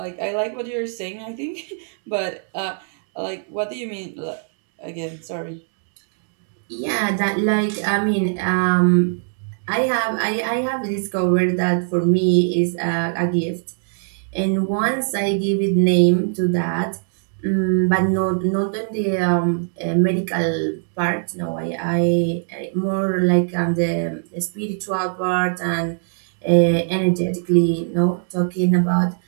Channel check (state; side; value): silent; left; digital silence